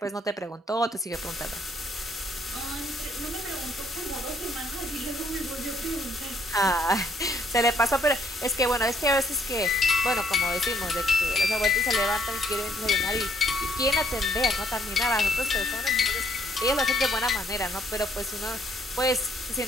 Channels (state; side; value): normal; both; correlation 0.67